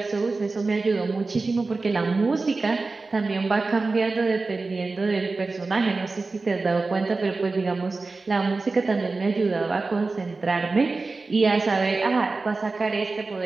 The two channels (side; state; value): left; quieter; 3.7 dB